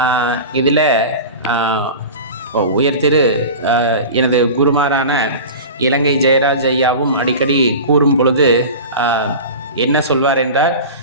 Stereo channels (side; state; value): both; inverted; correlation -0.32